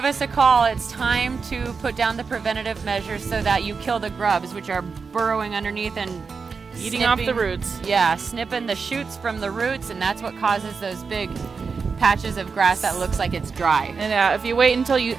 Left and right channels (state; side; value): quieter; left; 5.1 dB